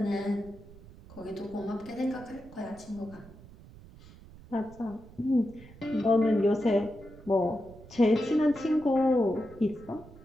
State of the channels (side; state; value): right; noise; rumble, 20 dB below the sound